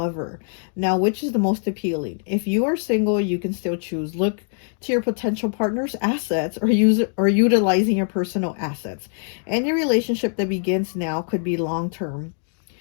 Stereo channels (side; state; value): right; silent; digital silence